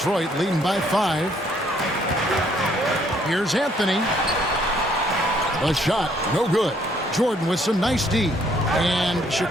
leading by 5. Here's Anthony. A shot, no good. Jordan with some nice D. And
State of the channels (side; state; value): both; normal; correlation 0.66